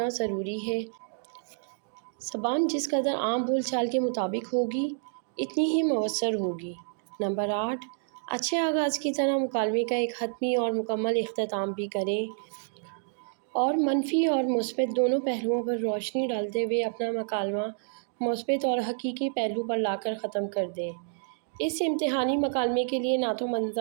ضروری ہے۔ زبان جس قدر عام بول چال کے مطابق ہوگی اتنی ہی مؤثر ہوگی۔ نمبر 8، اچھے آغاز کی طرح مکالمے کا ایک حتمی اور مکمل اختتام بھی کریں اور منفی اور مثبت دونوں پہلوؤں پر روشنی ڈالتے ہوئے اپنا مکالمہ مثبت اور حقیقی پہلو پر لا کر ختم کر دیں۔ اس امتحانی مکالمے کے لیے نہ تو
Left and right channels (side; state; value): left; silent; digital silence